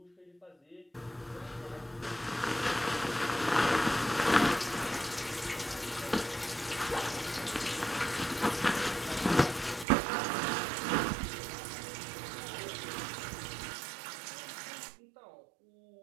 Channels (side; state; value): left; drops out; at 9.9 s